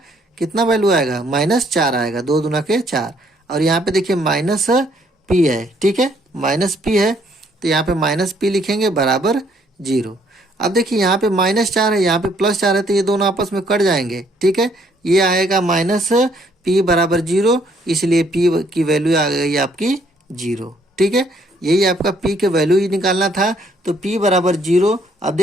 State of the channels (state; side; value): normal; both; correlation 0.66